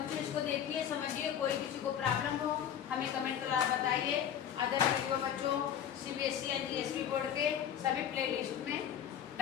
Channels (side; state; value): right; quieter; 9.4 dB